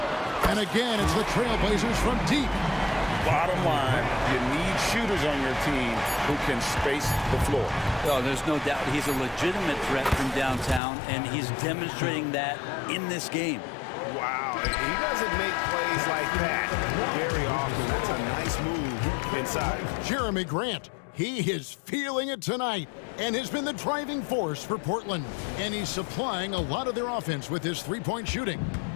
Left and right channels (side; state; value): right; drops out; at 10.8 s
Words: And again, it's the Trailblazers from deep. Bottom line, you need shooters on your team who can space the floor. Oh, there's no doubt he's a legitimate threat from downtown, and he's demonstrating that in this game. Wow, he doesn't make plays like that very often. That's a nice move inside. Jeremy Grant, he is feeling it tonight and has been the driving force for Portland. And he's supplying a lot of their offense with his three-point shooting.